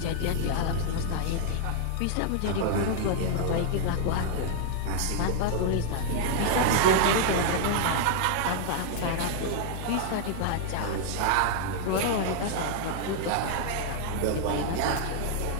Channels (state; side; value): different; both; correlation 0.00